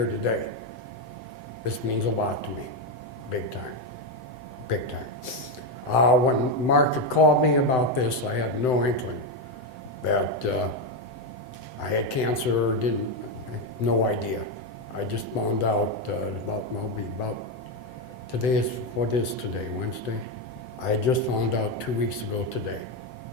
today. This means a lot to me, big time, big time. When Mark had called me about this, I had no inkling that I had cancer or didn't, no idea. I just found out today is, what is today, Wednesday? I just found out 2 weeks ago today,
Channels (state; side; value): late; right; 7.9 ms